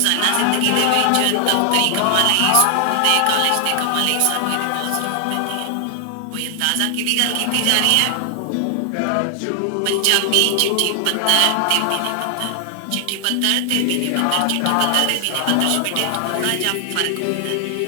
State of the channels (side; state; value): both; different; correlation 0.00